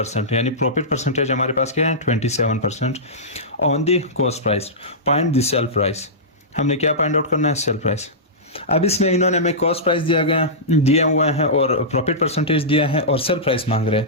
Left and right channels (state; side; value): normal; both; correlation -0.16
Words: यानी प्रॉफिट परसेंटेज हमारे पास क्या है 27% on the cost price, find the sale price. हमने क्या फाइंड आउट करना है, सेल प्राइस। अब इसमें इन्होंने हमें कॉस्ट प्राइस दिया हुआ है और प्रॉफिट परसेंटेज दिया है और सेल प्राइस मांग रहे हैं।